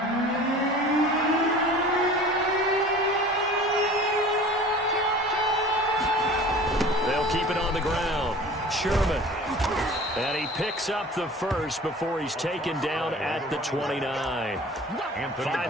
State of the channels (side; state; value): both; normal; correlation 0.43